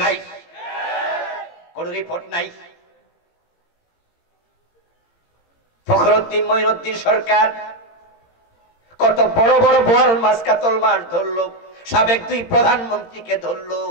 নাই। কোন রিপোর্ট নাই। ফখরুদ্দিন মঈনুদ্দিন সরকার কত বড় বড় বোয়াল মাছ কাতল মাছ ধরলো, সাবেক 2 প্রধানমন্ত্রীকে ধরলো,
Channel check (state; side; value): late; right; 17 ms